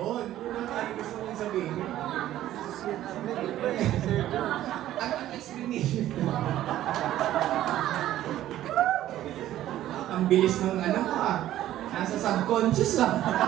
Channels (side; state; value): left; quieter; 13.3 dB